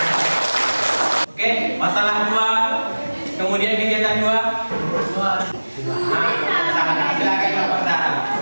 Oke, masalah 2. Kemudian kegiatan 2. Nah, silakan kelompok Sarah.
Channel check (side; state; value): both; inverted; correlation -1.00